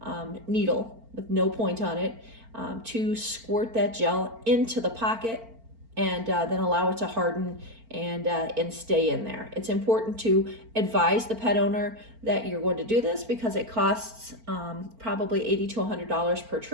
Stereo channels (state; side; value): late; left; 4.4 ms